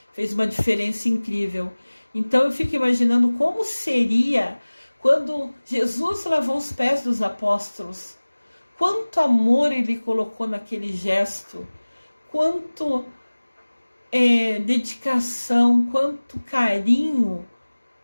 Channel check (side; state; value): both; inverted; correlation -1.00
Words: fez uma diferença incrível. Então eu fico imaginando como seria quando Jesus lavou os pés dos apóstolos. Quanto amor ele colocou naquele gesto, quanto dedicação, quanto carinho